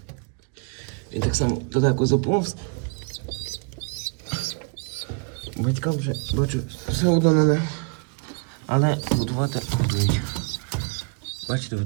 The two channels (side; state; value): left; quieter; 36.5 dB